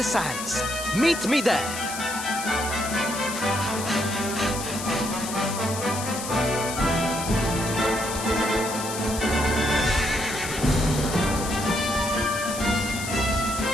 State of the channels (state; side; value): noise; left; hiss, 7 dB below the sound